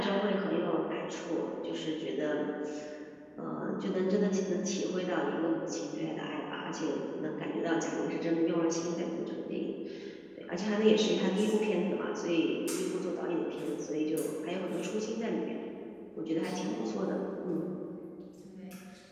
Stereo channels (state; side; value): identical; both; correlation 1.00